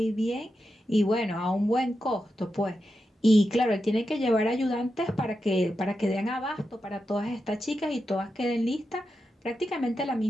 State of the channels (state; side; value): normal; both; correlation 0.88